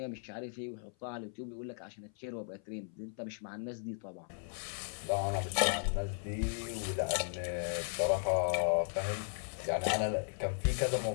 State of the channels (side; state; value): right; silent; 54 dB below the other